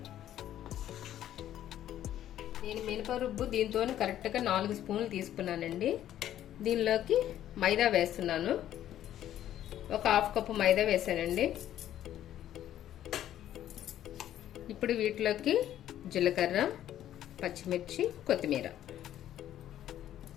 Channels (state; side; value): quieter; right; 11.8 dB